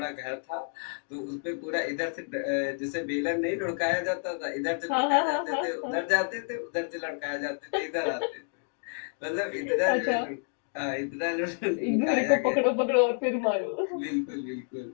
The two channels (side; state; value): right; silent; 58 dB below the other